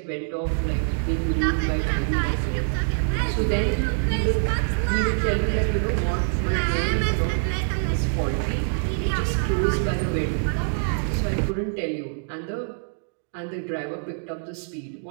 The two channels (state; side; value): silent; left; digital silence